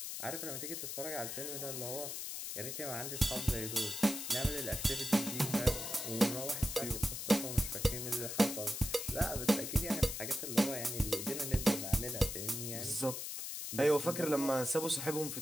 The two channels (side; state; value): left; noise; hiss, 5 dB below the sound